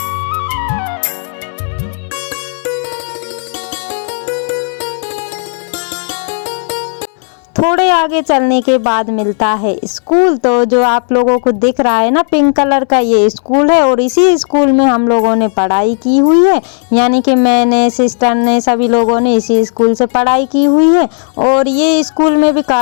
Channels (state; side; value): silent; right; digital silence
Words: थोड़े आगे चलने के बाद मिलता है स्कूल। तो जो आप लोगों को दिख रहा है ना, पिंक कलर का, ये स्कूल है। और इसी स्कूल में हम लोगों ने पढ़ाई की हुई है, यानी कि मैंने, सिस्टर ने, सभी लोगों ने इसी स्कूल से पढ़ाई की हुई है। और ये स्कूल में भी